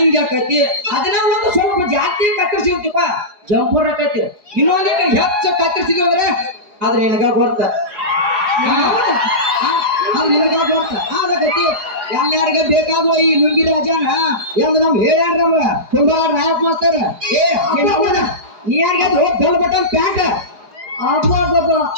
ಹಾಕೈತಿ. ಅದನ್ನ ಒಂದು ಸ್ವಲ್ಪ ಜಾಸ್ತಿ ಕತ್ತರಿಸಿರ್ತೀಪ ಜಂಪರ್ ಹಾಕೈತಿ. ಇನ್ನೊಂದಿಟ್ಟು ಹೆಚ್ಚು ಕತ್ತರಿಸಿದ್ವಿ ಅಂದ್ರೆ ಆದ್ರೆ ನಿನಗ ಗೊತ್ತ, ನಿನಗ ಗೊತ್ತ ಆಗೈತಿ. ಎಲ್ಲಾರಿಗ ಬೇಕಾಗುವ ಈ ಲುಂಗಿ ರಾಜನ ಎಂದು ನಮ್ ಹೇಳ್ಯಾರ ನಮ್ಗ ತುಂಬಾ ನಾಯಕ್ ಮಾಸ್ತರ. ನೀ ಯಾರಿಗ ಡಲ್ ಬಟನ್ ಪ್ಯಾಂಟ್ ಅಬ್ಬಬ್ಬ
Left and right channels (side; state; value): left; late; 4.8 ms